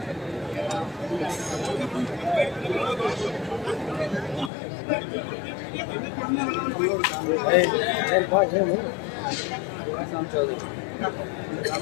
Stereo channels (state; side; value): drops out; right; at 4.5 s